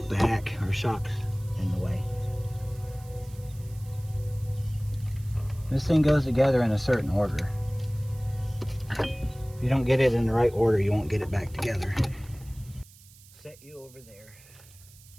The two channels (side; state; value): right; noise; hiss, 24 dB below the sound